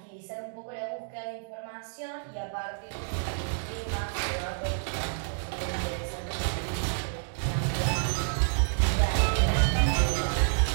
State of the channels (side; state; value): left; silent; digital silence